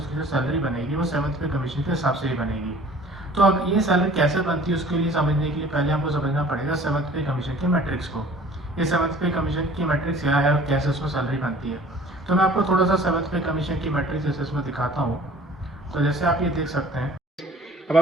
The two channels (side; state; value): both; normal; correlation 0.49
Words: जो सैलरी बनेगी वो 7th पे कमीशन के हिसाब से ही बनेगी। तो अब ये सैलरी कैसे बनती है उसके लिए समझने के लिए पहले हमको समझना पड़ेगा 7th पे कमीशन के मैट्रिक्स को। ये 7th पे कमीशन की मैट्रिक्स क्या है और कैसे उसमें सैलरी बनती है। तो मैं आपको थोड़ा सा 7th पे कमीशन की मैट्रिक्स जैसे इसमें दिखाता हूँ। तो जैसे आप ये देख सकते हैं, अब